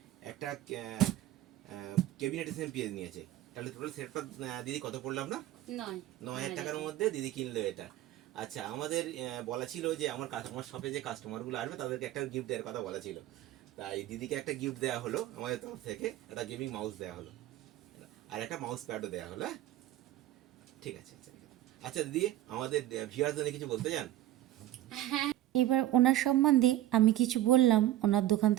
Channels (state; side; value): quieter; left; 13.8 dB